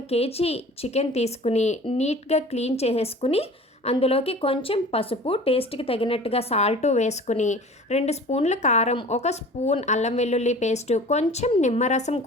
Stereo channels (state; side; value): normal; both; correlation 0.43